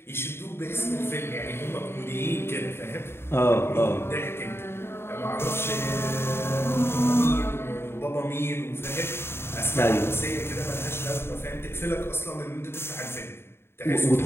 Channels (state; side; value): late; right; 0.12 ms